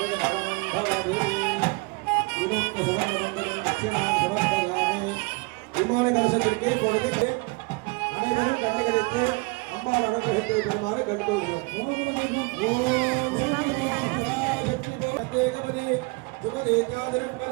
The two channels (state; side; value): quieter; left; 28.4 dB